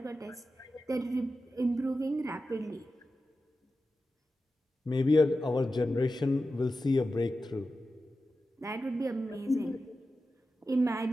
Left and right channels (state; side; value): normal; both; correlation 0.92